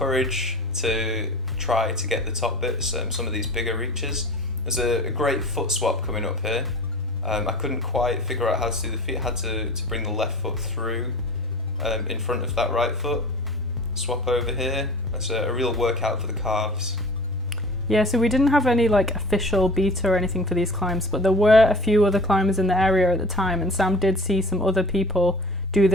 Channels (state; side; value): normal; both; correlation 0.41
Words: to try to get the top bits, some of these bigger reaches. There's a great foot swap coming up here. I couldn't quite figure out how to do the feet. I had to bring the left foot through in front of that right foot. Swap over here. That's a real workout for the calves. Yeah, so we didn't have any like official beta or anything for these climbs, but there were a few other climbers in the area at the time, and Sam did see some other people do